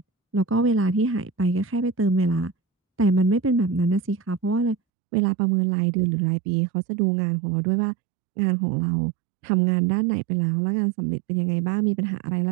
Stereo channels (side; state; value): left; drops out; at 4.8 s